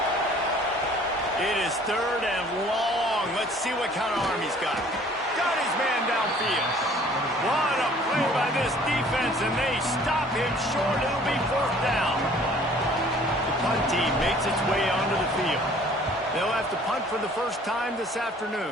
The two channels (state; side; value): normal; both; correlation 0.54